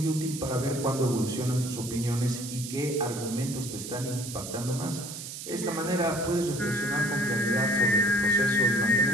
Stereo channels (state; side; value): noise; right; hiss, 9 dB below the sound